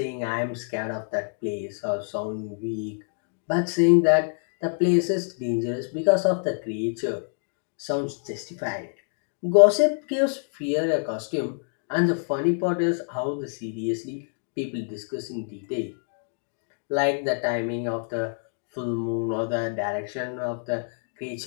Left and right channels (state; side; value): silent; right; 61 dB below the other